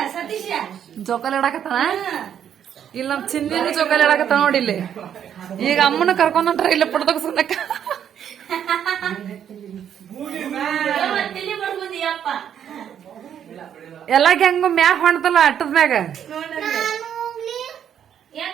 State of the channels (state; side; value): quieter; left; 9.2 dB